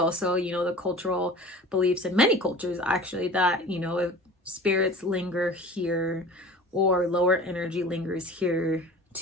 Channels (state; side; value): normal; both; correlation 0.41